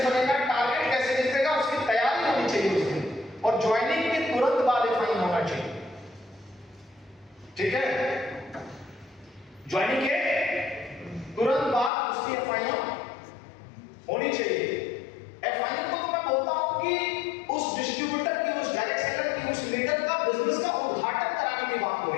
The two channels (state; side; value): drops out; right; at 11.9 s